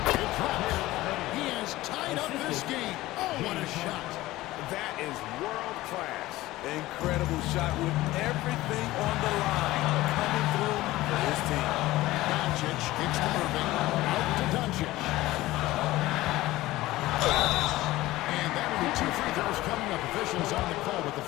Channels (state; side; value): quieter; right; 17.4 dB